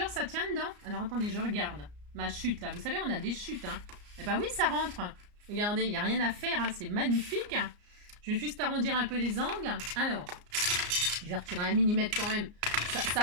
ça tient dedans. Alors, attendez, je regarde. Ma chute, là. Vous savez, on a des chutes, hein. Eh ben oui, ça rentre. Regardez, il n'y a rien à faire, hein. C'est magnifique. Je vais juste arrondir un peu les angles. Alors... je vais retirer 1 mm quand même.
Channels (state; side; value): late; left; 34 ms